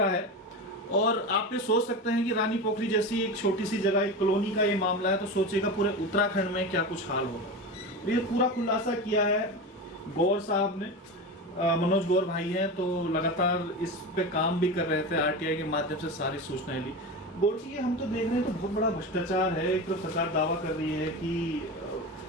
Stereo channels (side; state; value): both; normal; correlation 0.24